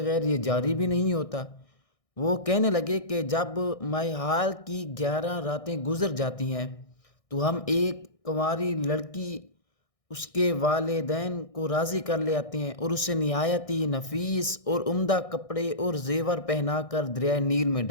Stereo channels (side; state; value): right; late; 1.6 ms